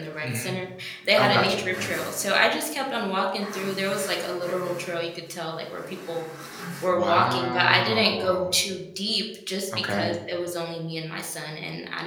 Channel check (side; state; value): both; identical; correlation 1.00